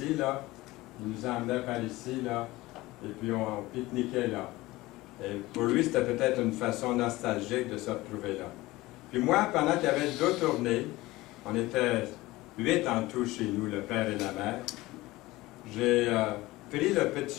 là, il nous emmenait par ici, là, et puis on pique-niquait là. Et pour lui, c'était peut-être une façon nostalgique de se retrouver là. Puis moi, pendant qu'il y avait deux tournées, on était 8 en tout chez nous, le père et la mère, j'ai pris le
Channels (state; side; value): quieter; right; 19.2 dB